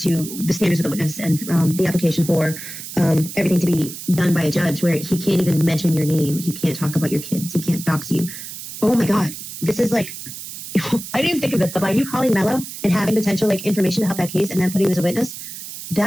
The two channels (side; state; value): right; noise; hiss, 10 dB below the sound